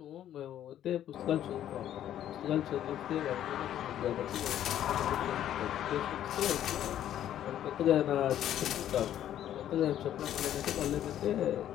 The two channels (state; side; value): quieter; right; 11.3 dB